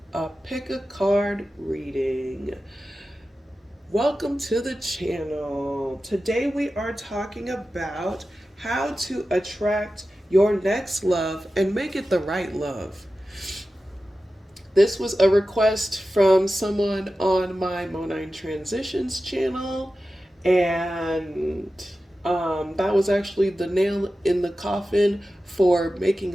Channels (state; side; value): normal; both; correlation 0.93